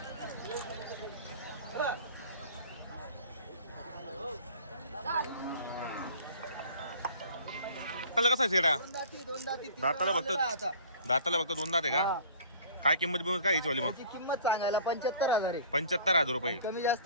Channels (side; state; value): both; inverted; correlation -0.47